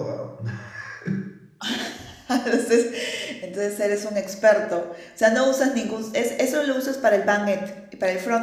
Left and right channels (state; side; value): identical; both; correlation 1.00